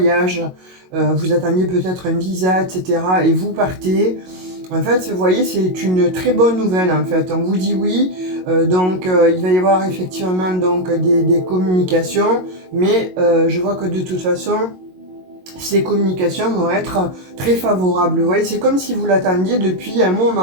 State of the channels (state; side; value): late; left; 22 ms